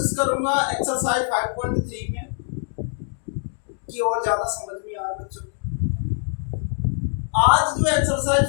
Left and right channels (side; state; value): right; silent; digital silence